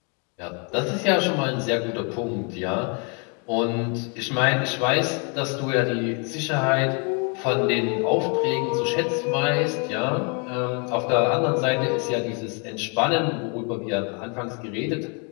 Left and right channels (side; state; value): right; quieter; 36.2 dB